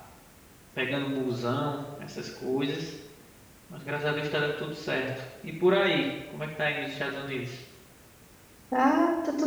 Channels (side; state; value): both; identical; correlation 1.00